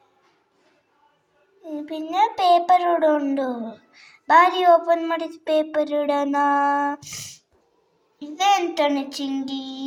പിന്നെ പേപ്പർ ഇവിടെ ഉണ്ട് ഭാര്യ ഓപ്പൺ ಮಾಡಿದ പേപ്പർ ഇടണ ഇതെന്താണ്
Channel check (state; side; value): identical; both; correlation 1.00